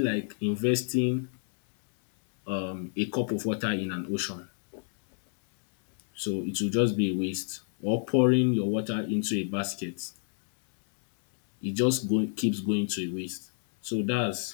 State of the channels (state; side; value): silent; right; 59 dB below the other